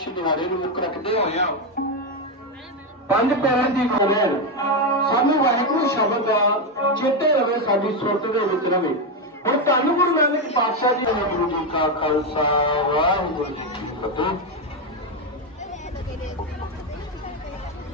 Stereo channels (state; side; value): normal; both; correlation 0.07